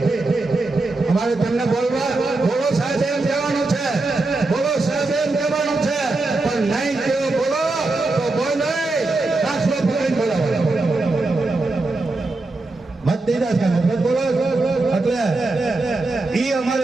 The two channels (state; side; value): quieter; left; 3.2 dB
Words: અમારે તમને બોલવા બોલો સાહેબ એમ કહેવાનું છે, બોલો સાહેબ એમ કહેવાનું છે, પણ નહીં કેવો બોલો તો બોલ નહીં દાખલો પકડીને બોલાવો. મત દીધા છે મત બોલો એટલે ઈ